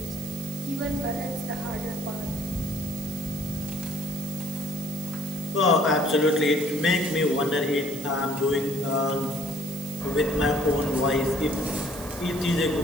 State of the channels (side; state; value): right; noise; hiss, 14 dB below the sound